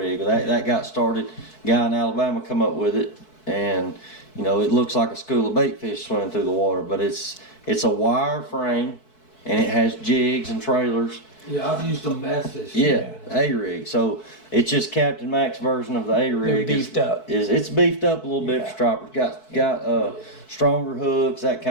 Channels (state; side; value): late; right; 4.6 ms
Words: That got started. Guy in Alabama come up with it, and it looks like a school of bait fish swimming through the water. But it's a wire frame, and it has jigs and trailers. Yeah, I've used them bass fishing. Yeah, A rig. So it's just Captain Mac's version of the A rig. They're beefed up. It's beefed up a little bit for stripers. Got stronger hooks, that